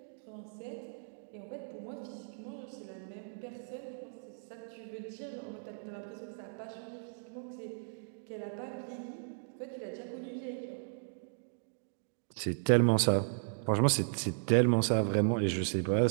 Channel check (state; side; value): silent; left; digital silence